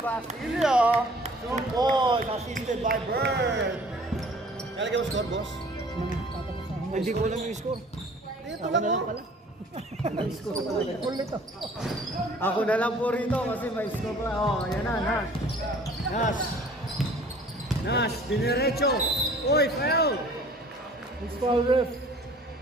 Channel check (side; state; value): both; normal; correlation 0.51